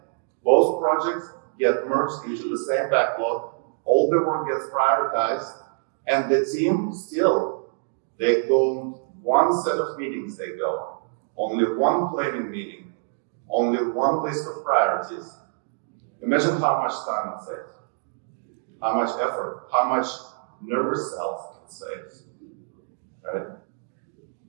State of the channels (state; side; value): silent; left; digital silence